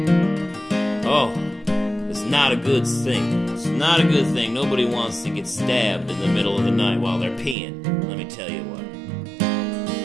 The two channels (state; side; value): drops out; left; at 7.6 s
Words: oh, it's not a good thing. It's not a good thing. Nobody wants to get stabbed in the middle of the night while they're peeing. Let me tell you what.